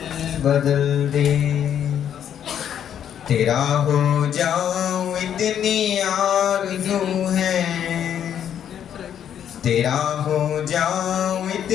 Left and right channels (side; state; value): right; quieter; 9.4 dB